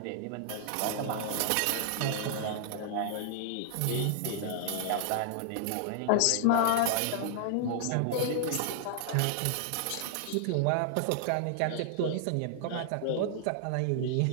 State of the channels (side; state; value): both; different; correlation -0.01